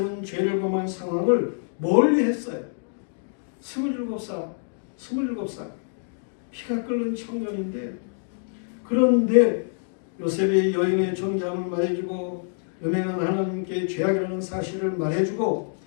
죄를 범한 상황을 멀리 했어요. 27살 피가 끓는 청년인데, 그런데 요셉이 여인의 정장을 말해주고 음행한 하나님께 죄악이라는 사실을 말해주고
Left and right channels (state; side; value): silent; right; digital silence